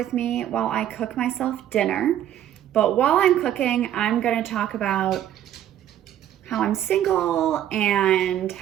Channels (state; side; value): quieter; left; 11.3 dB